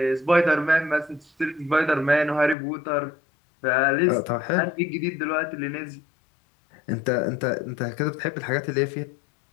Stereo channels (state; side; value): drops out; right; at 2.6 s